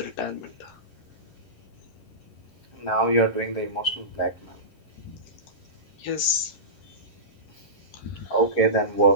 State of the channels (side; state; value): right; late; 11 ms